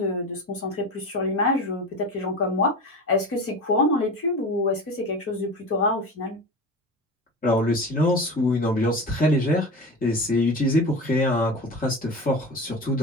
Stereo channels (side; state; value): both; normal; correlation 0.30